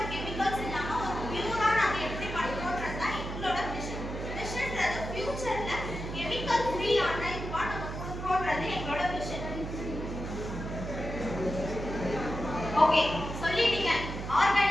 கெமிக்கல்ஸ் இல்லாம ஒரு பியூரா நாம எப்படி பண்றோம்ன்றது தான் எங்களோட மிஷன். மிஷன்ன்றது ஃபியூச்சர்ல கெமிக்கல் ஃப்ரீயான இதுவா நம்ம கொடுக்கறோம்ன்றது எங்களோட மிஷன். ஓகே சொல்லிட்டீங்க,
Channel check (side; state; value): right; noise; hum, 6 dB below the sound